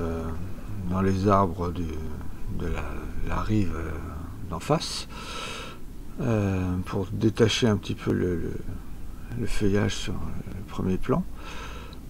dans les arbres de la rive d'en face pour détacher un petit peu le feuillage sur le premier plan.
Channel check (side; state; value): both; identical; correlation 1.00